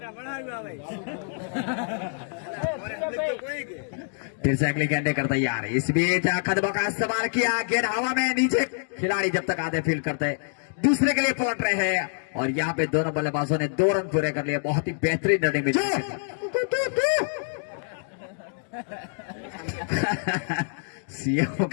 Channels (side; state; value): right; silent; digital silence